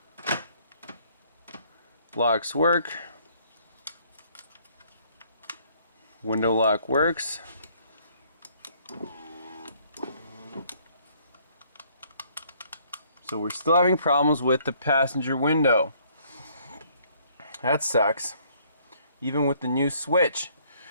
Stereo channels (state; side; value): inverted; both; correlation -0.63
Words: Locks work. Window lock works. So we're still having problems with the passenger window. That sucks. Even with the new switch.